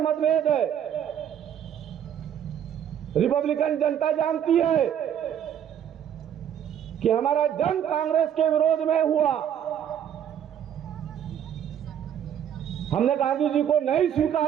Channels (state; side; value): quieter; left; 9.5 dB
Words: मतभेद है, रिपब्लिकन जनता जानती है कि हमारा जंग कांग्रेस के विरोध में हुआ। हमने गांधी जी को नहीं